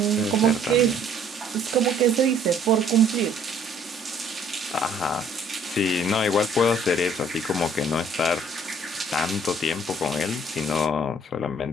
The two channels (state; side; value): normal; both; correlation 0.59